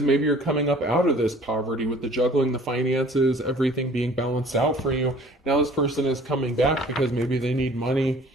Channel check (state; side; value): normal; both; correlation 0.51